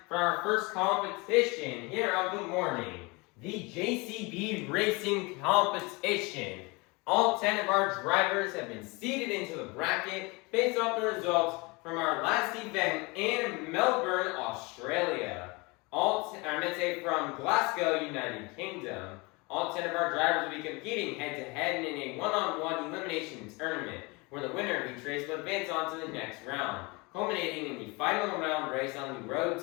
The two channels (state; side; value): quieter; right; 26.6 dB